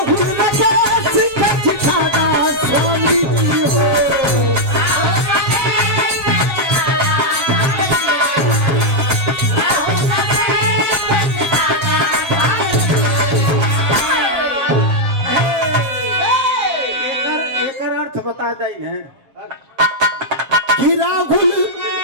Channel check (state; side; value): late; left; 7.5 ms